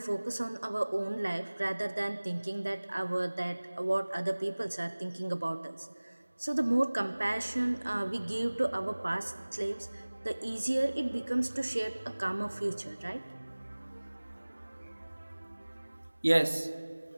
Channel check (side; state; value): both; inverted; correlation -1.00